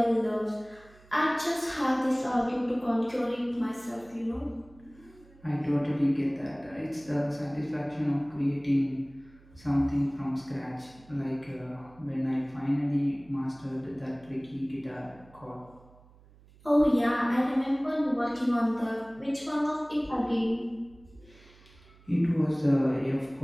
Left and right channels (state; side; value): noise; right; hum, 25 dB below the sound